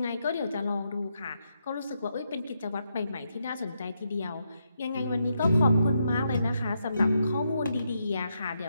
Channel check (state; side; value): inverted; both; correlation -0.81